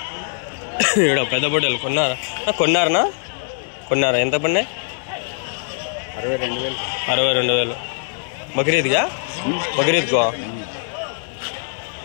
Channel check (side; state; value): right; silent; 65 dB below the other